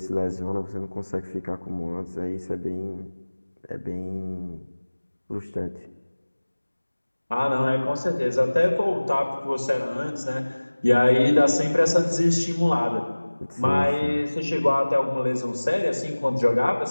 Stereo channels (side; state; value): both; inverted; correlation -1.00